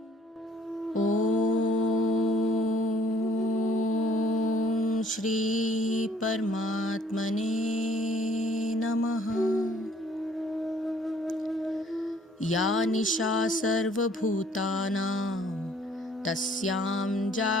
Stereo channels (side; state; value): both; normal; correlation 0.60